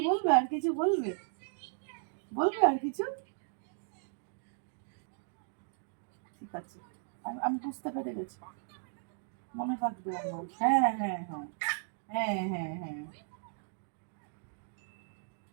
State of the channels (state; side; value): silent; left; digital silence